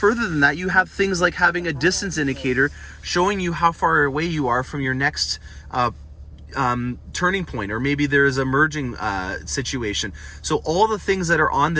than that, you have things like having a distance indicator showing you how far away you are from your next turning point, or maybe there is a merging situation. So all the things that are on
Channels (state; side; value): identical; both; correlation 1.00